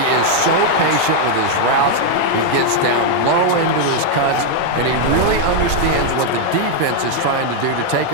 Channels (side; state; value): both; different; correlation 0.00